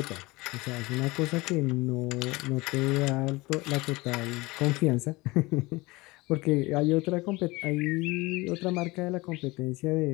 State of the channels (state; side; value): quieter; right; 22.4 dB